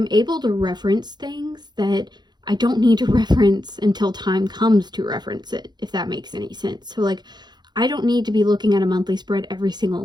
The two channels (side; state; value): left; late; 0.21 ms